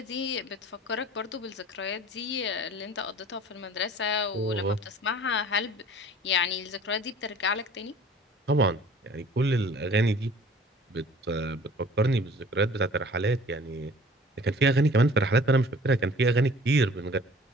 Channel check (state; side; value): normal; both; correlation 0.48